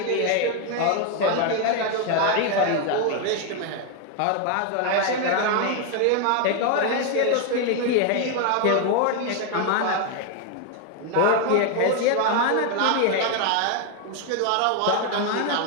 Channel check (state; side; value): different; both; correlation 0.01